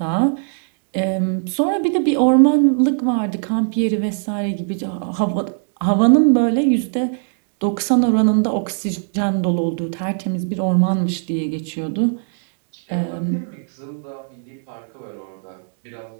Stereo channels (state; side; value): silent; left; digital silence